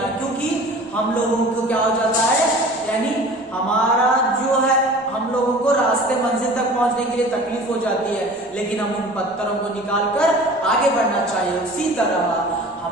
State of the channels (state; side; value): normal; both; correlation 0.42